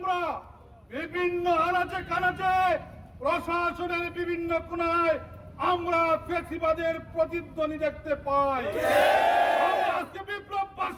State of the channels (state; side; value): identical; both; correlation 1.00